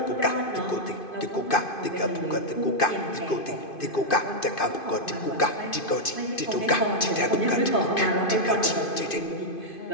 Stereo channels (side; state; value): right; late; 2.5 ms